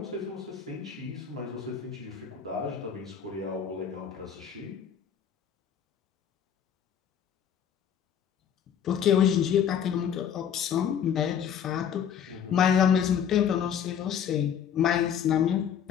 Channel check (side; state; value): right; quieter; 8.4 dB